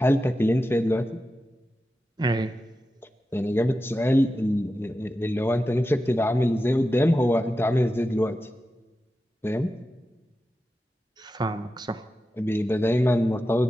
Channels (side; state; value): both; normal; correlation 0.92